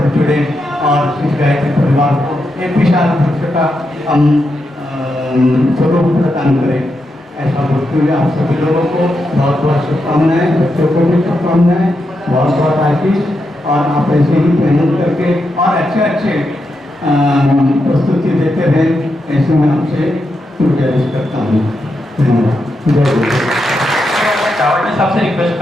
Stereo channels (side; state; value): both; normal; correlation 0.85